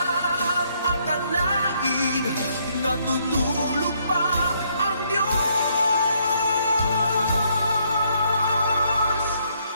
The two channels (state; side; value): inverted; both; correlation -0.71